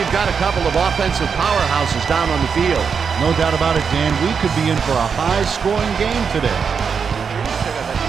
got a couple of offensive powerhouses down on the field. No doubt about it, Dan. We could be in for a high-scoring game today.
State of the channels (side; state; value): left; quieter; 6.2 dB